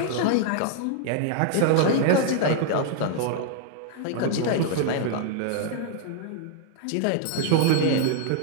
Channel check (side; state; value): both; different; correlation -0.01